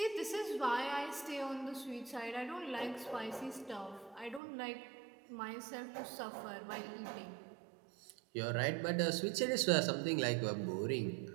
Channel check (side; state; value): left; drops out; at 4.4 s